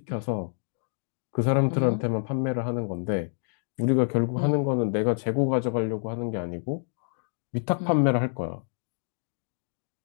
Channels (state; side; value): silent; right; 60 dB below the other